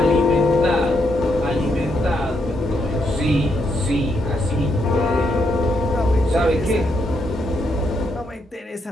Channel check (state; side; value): normal; both; correlation 0.77